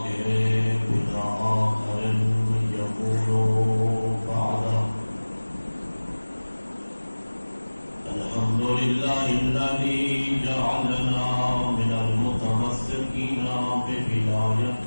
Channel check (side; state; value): both; inverted; correlation -1.00